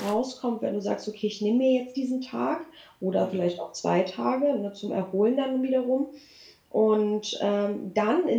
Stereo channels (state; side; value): identical; both; correlation 1.00